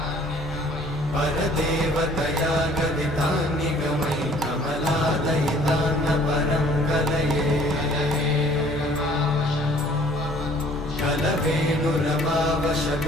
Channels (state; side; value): normal; both; correlation 0.55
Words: परदेवतया गदितान्निगमै कमलादयितान्न परं कलये